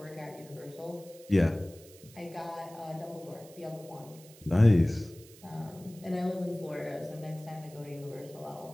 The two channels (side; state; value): right; noise; hiss, 22 dB below the sound